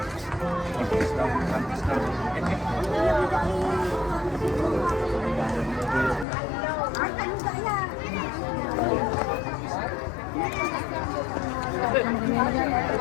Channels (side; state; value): right; drops out; at 6.2 s